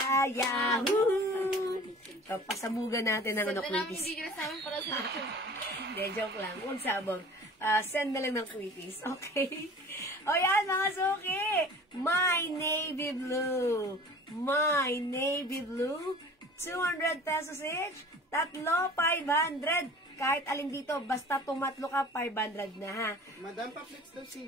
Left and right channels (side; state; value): both; normal; correlation 0.43